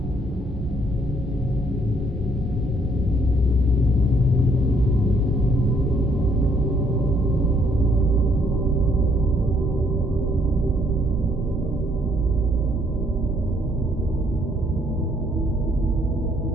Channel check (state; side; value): normal; both; correlation 0.67